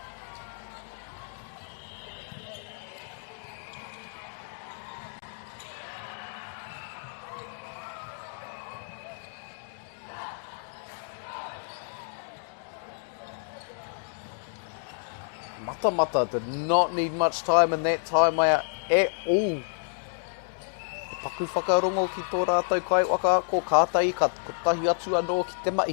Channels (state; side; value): silent; right; digital silence